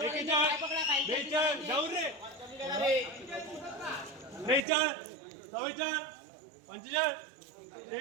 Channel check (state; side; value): drops out; left; at 4.6 s